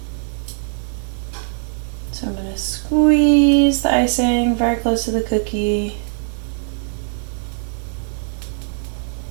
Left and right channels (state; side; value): silent; left; digital silence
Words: So I'm going to squeeze the icing very close to the cookie.